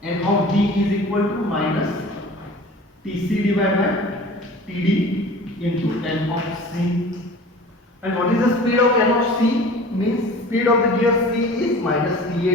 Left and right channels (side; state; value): both; normal; correlation 0.42